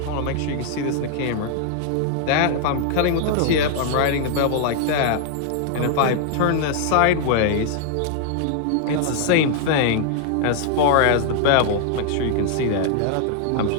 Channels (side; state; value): both; different; correlation 0.00